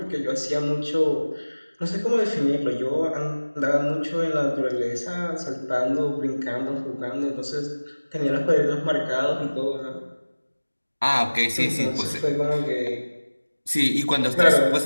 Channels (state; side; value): inverted; both; correlation -1.00